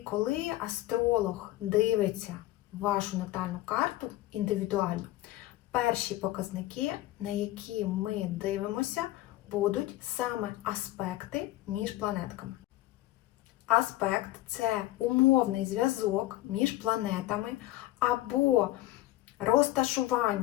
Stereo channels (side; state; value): right; quieter; 16.2 dB